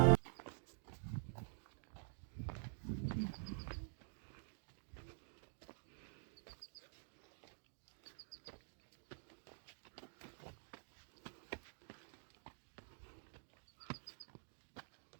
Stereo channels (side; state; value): left; silent; digital silence